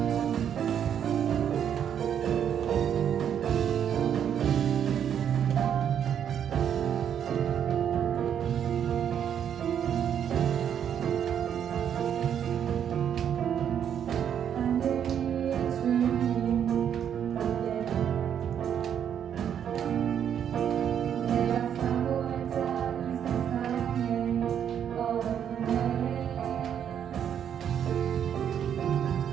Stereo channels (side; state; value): left; quieter; 8.9 dB